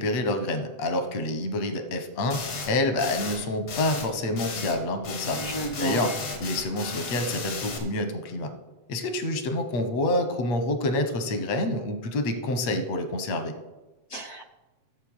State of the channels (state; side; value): late; right; 8.1 ms